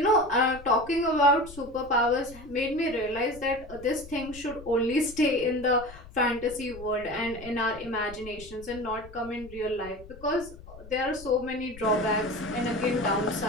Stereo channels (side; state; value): left; noise; rumble, 18 dB below the sound